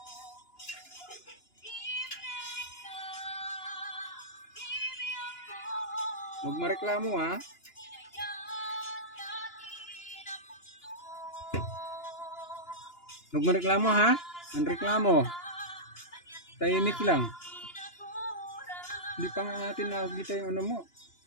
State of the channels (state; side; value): late; right; 2.9 ms